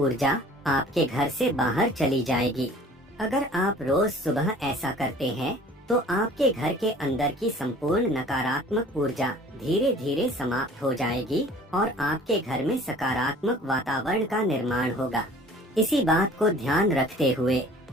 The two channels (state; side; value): normal; both; correlation 0.49